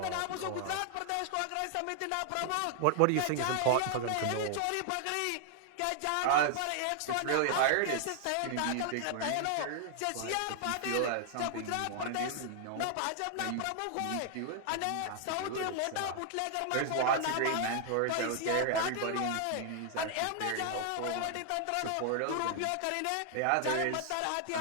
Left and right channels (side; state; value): both; different; correlation 0.00